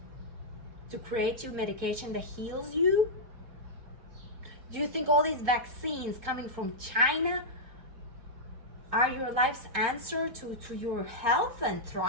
to create you medication that heals you? Do you think all these vaccines coming from China are your life's answer to your health and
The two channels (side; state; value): left; late; 4.4 ms